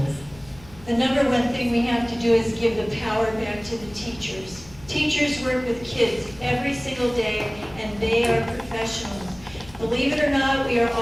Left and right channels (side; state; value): left; noise; hum, 21 dB below the sound